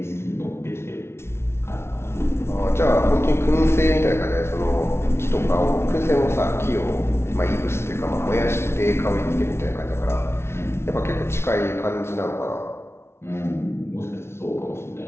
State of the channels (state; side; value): late; right; 0.12 ms